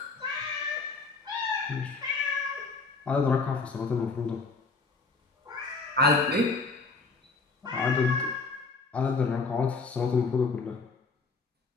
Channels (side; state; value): right; quieter; 4.2 dB